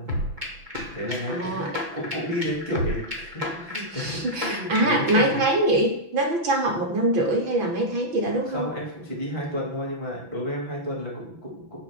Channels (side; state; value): left; late; 6.0 ms